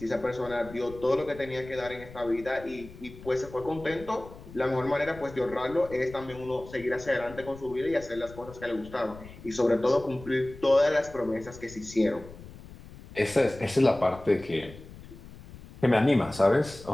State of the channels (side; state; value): left; noise; rumble, 17 dB below the sound